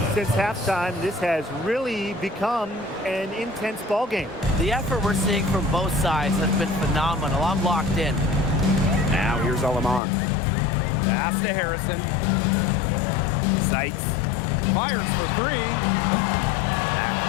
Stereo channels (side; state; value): right; drops out; at 10.0 s